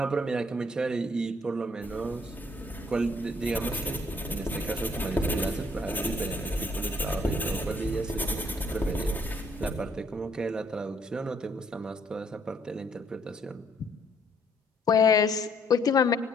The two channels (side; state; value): both; normal; correlation 0.65